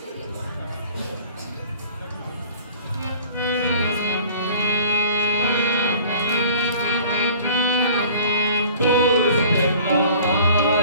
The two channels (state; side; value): inverted; both; correlation -0.47